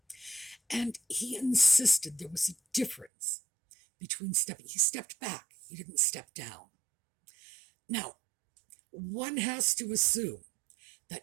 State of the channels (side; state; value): left; drops out; at 3.1 s